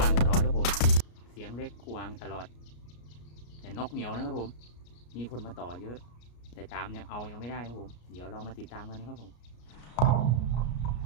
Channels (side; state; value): right; late; 33 ms